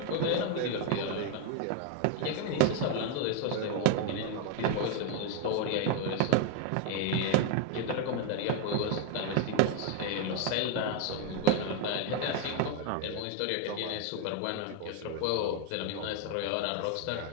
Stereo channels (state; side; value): different; both; correlation 0.01